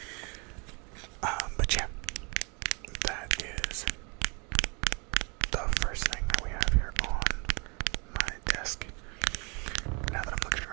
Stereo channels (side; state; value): left; quieter; 31.7 dB